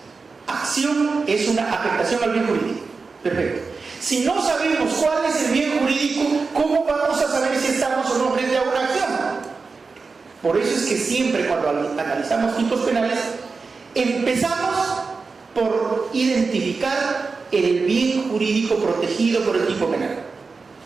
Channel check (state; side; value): quieter; left; 4.5 dB